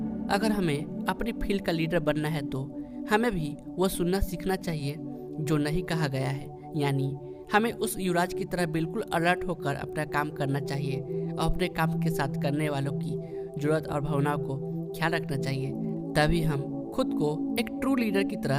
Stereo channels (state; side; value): identical; both; correlation 1.00